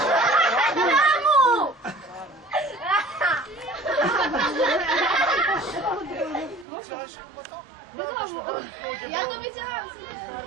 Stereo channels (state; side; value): drops out; left; at 6.7 s